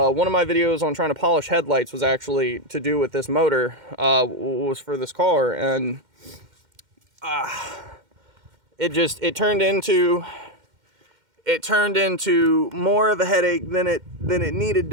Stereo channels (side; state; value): left; late; 2.1 ms